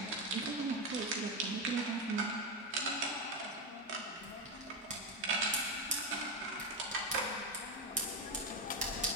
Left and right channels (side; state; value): both; normal; correlation 0.10